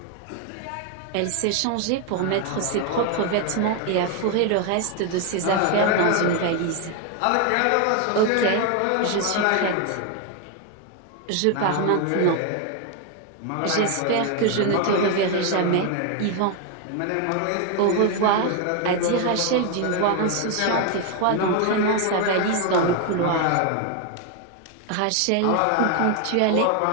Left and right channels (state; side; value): different; both; correlation 0.01